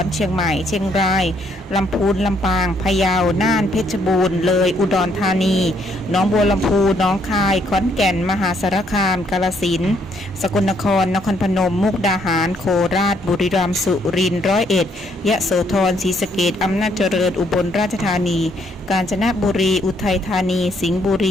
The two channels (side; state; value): both; normal; correlation 0.69